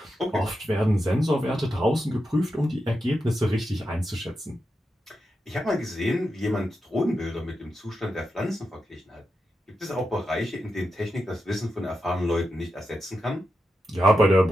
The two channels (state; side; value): normal; both; correlation 0.88